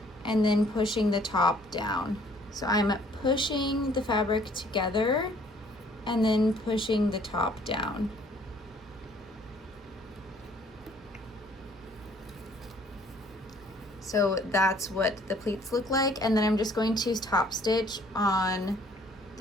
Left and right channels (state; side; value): normal; both; correlation 0.59